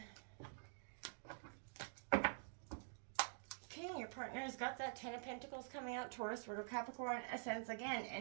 partner has got that 10 of Pentacles coming out, Taurus, Virgo, Capricorn, Ascends again,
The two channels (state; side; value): silent; left; digital silence